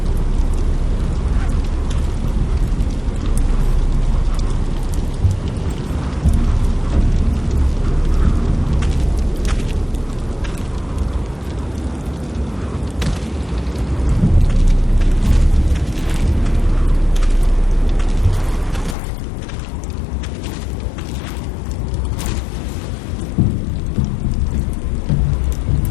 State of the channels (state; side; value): drops out; right; at 18.9 s